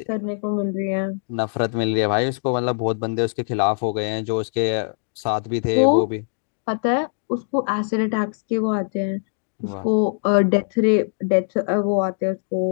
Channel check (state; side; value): silent; right; digital silence